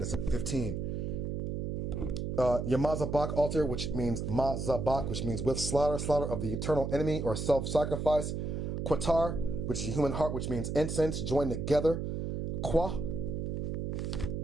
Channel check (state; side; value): noise; right; hum, 2 dB below the sound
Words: at 15. Your mazabak altar, which means mazabak, which means with slaughter of the eternal enemy or self-sacrifice. Qatar, which is a human heart, which means incense joined together. Qua